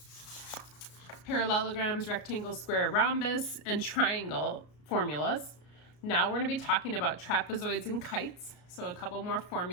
parallelograms, rectangle, square, rhombus, and triangle formulas. Now we're going to be talking about trapezoids and kites, so a couple more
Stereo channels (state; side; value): late; right; 33 ms